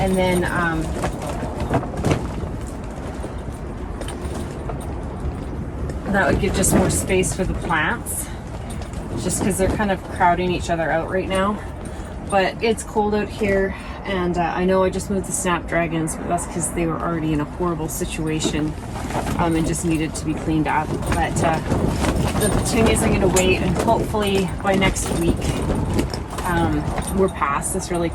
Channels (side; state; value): both; identical; correlation 1.00